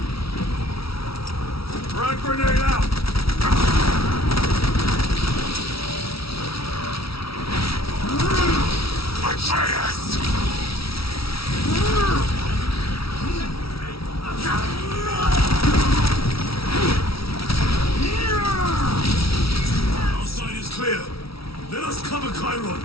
Frag grenade out! Atreus! Outside is clear. Let us cover Chiron.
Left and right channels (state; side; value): late; right; 0.76 ms